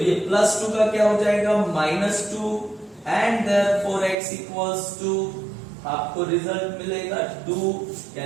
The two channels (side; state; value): left; drops out; at 4.2 s